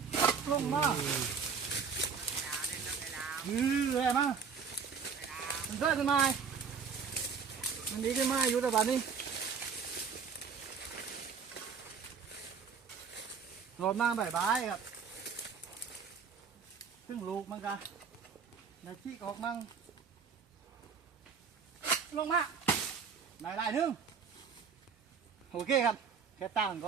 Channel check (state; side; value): quieter; left; 6.1 dB